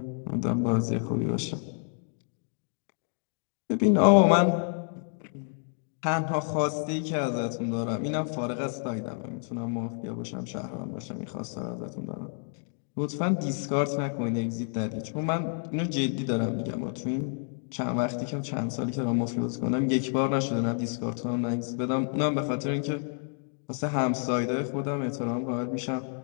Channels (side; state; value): right; silent; 56 dB below the other